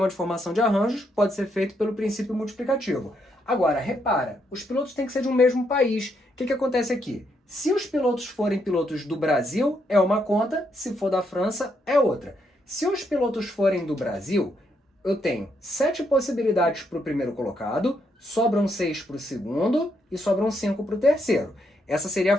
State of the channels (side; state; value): both; normal; correlation 0.77